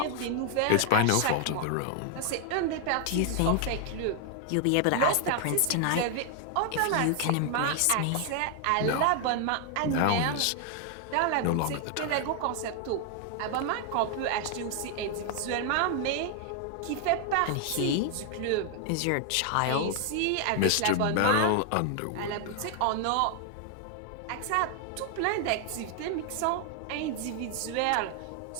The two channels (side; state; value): both; different; correlation 0.00